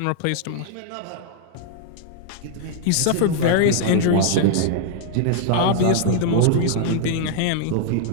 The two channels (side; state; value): both; different; correlation -0.01